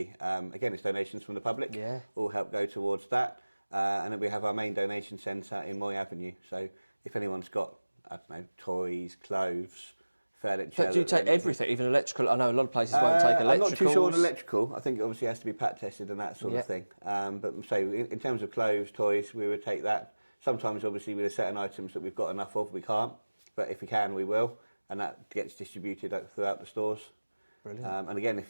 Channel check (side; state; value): both; inverted; correlation -1.00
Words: again, it's donations from the public. All help go towards that, and then we have our main donation centre in Moy Avenue. So if anyone's got toys, clothes, furniture. So do you take everything, even electrical? I know a lot of places won't take electrical. I'm not too sure on electrical. I think it obviously has to be pat tested and that sort of thing. But so in terms of clothes, toys, we would take that. Sometimes, obviously, with certain items that we've got enough of, we can't. But if we can, we will. And that gets distributed throughout the stores. Brilliant. And again,